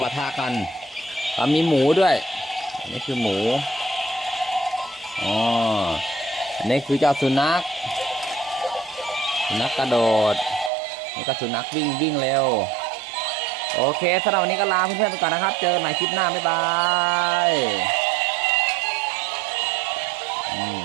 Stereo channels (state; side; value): drops out; left; at 10.7 s